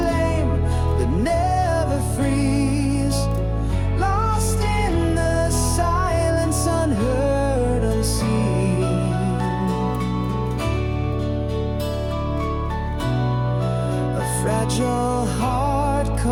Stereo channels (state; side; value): identical; both; correlation 1.00